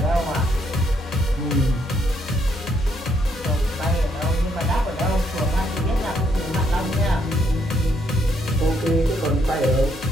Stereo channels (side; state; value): both; normal; correlation 0.72